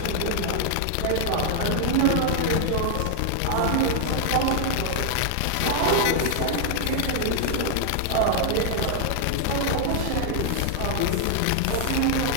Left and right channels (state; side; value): different; both; correlation 0.00